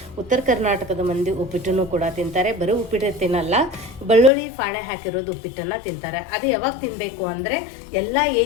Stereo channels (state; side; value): drops out; right; at 4.3 s